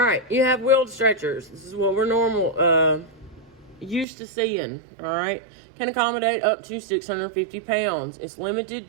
you have wheeled stretchers. This is what we're used to seeing, all right? Can accommodate up to 650 pounds. It's limited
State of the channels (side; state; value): left; drops out; at 4.0 s